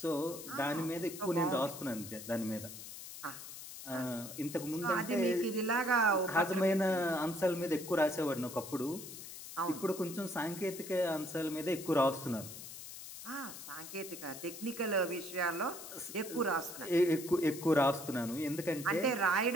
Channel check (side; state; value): left; noise; hiss, 12 dB below the sound